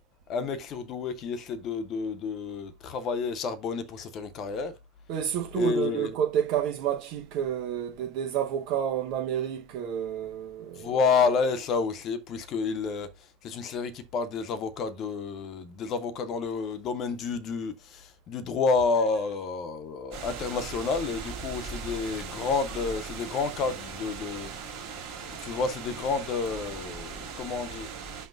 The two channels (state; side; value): normal; both; correlation 0.35